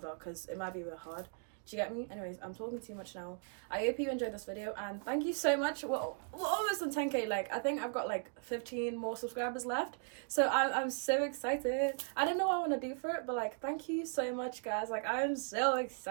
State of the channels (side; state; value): left; silent; 53 dB below the other